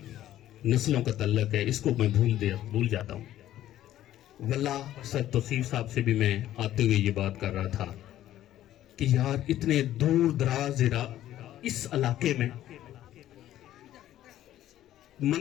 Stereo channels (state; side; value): quieter; right; 13.0 dB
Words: نسلوں کا تعلق ہے، اس کو میں بھول جاتا ہوں. واللہ سید توصیف صاحب سے بھی میں آتے ہوئے یہ بات کر رہا تھا کہ یار اتنے دور دراز اس علاقے میں